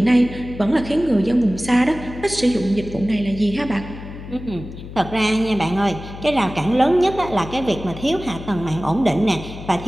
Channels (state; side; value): noise; left; hum, 12 dB below the sound